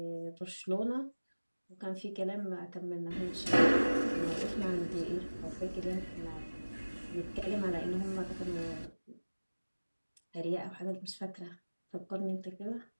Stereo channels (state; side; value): inverted; both; correlation -1.00